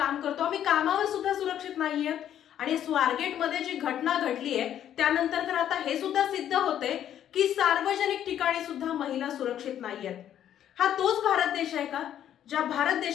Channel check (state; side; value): quieter; right; 10.5 dB